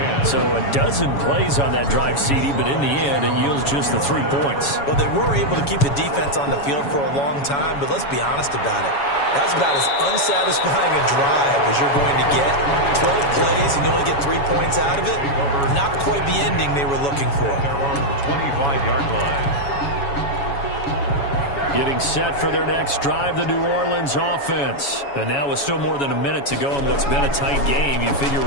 So a dozen plays on that drive, CD, but in the end, it yields just the 3 points. Well, they were able to keep the defense on the field for a long time, but let's be honest about it. That was about as unsatisfying a drive as you're going to get. 12 plays and you only get 3 points out of it. Not quite the ending they were looking for. Their own 25-yard line. Getting set for their next drive, the New Orleans offense. And now with still more than a minute to go in what's been a tight game, you figure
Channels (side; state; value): right; late; 7.1 ms